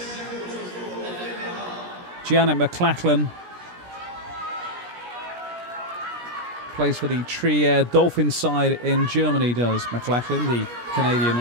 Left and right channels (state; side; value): late; left; 17 ms